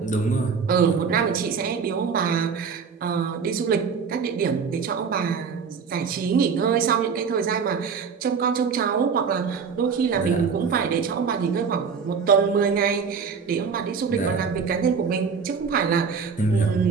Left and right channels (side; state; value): left; quieter; 5.9 dB